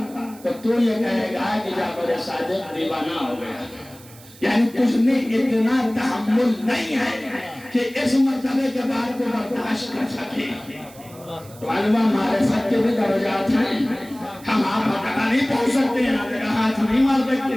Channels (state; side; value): noise; right; hiss, 22 dB below the sound